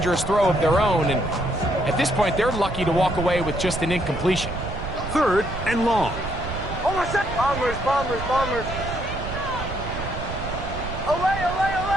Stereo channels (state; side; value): noise; right; rumble, 7 dB below the sound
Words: throw of their own. And at this point, they're lucky to walk away with just an incompletion. 3rd and long. Bombers. Away.